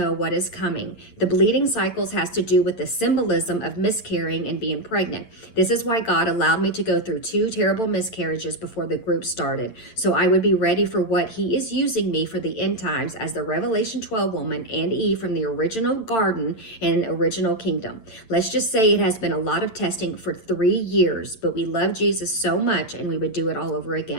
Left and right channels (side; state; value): right; late; 8.9 ms